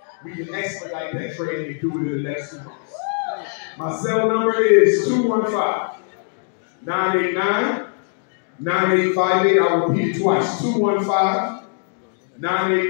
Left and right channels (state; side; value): silent; right; digital silence